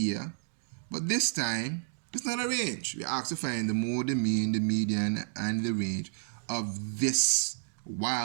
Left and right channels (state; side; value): silent; left; digital silence